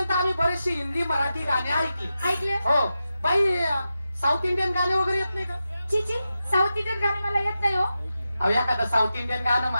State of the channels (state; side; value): inverted; both; correlation -0.91